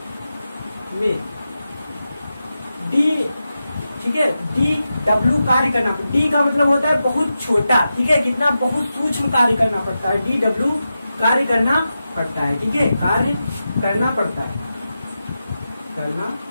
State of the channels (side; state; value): both; inverted; correlation -0.90